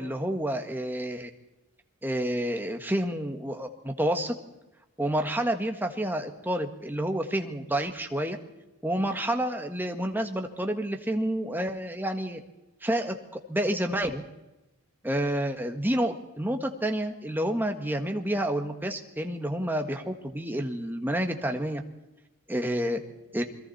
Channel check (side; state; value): both; normal; correlation 0.75